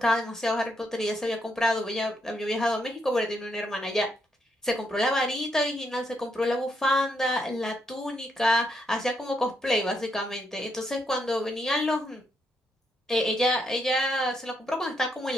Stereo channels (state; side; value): normal; both; correlation 0.78